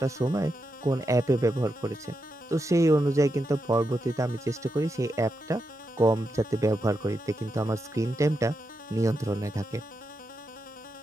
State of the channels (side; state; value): both; normal; correlation 0.86